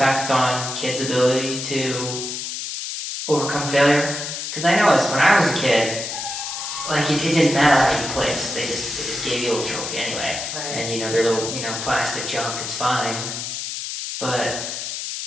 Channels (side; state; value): left; noise; hiss, 5 dB below the sound